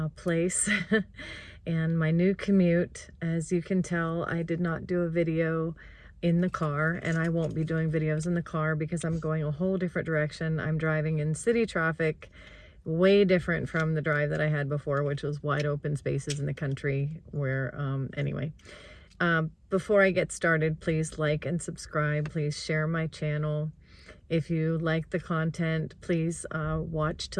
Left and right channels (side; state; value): both; identical; correlation 1.00